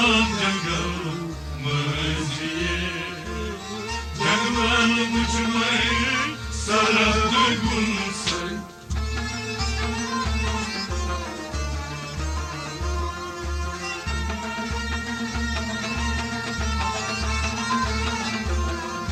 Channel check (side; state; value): both; identical; correlation 1.00